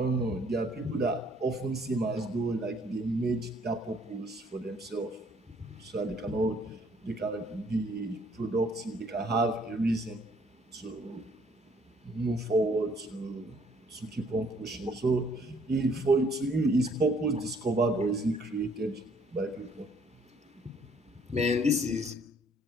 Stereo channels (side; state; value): both; normal; correlation 0.63